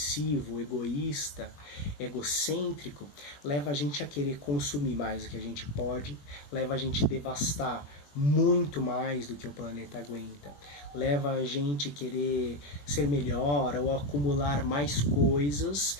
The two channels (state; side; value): late; right; 21 ms